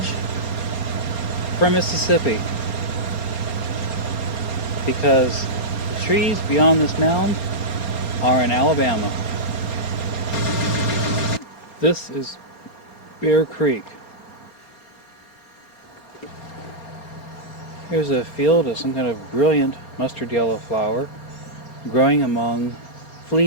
from Mississippi. Because the trees beyond this mound are in Alabama. This is Bear Creek. Here's a field of some kind of brilliant mustard yellow flower growing among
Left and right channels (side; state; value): right; late; 4.3 ms